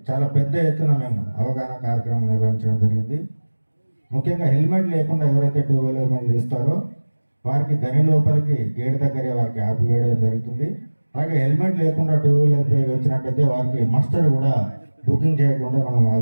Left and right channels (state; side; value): inverted; both; correlation -1.00